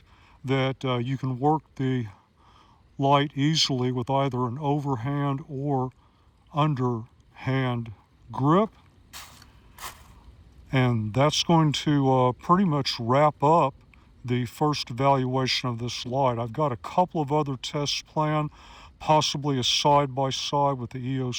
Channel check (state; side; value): identical; both; correlation 1.00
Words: that you can work the light easily with either an overhand or underhand grip. And that's going to pretty much wrap up the first evaluation of this light. I've got a couple of other tests planned, possibly a side-by-side with the